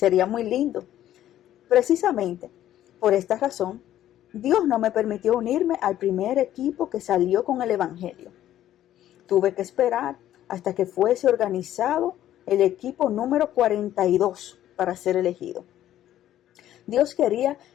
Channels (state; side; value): quieter; right; 12.4 dB